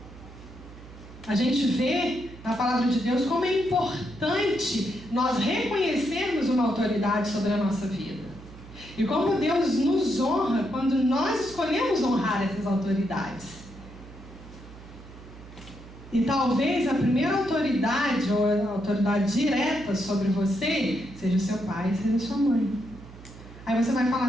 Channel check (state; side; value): noise; right; hum, 17 dB below the sound